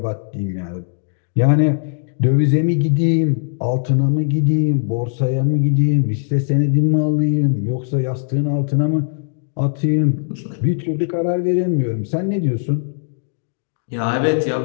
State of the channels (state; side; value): silent; right; digital silence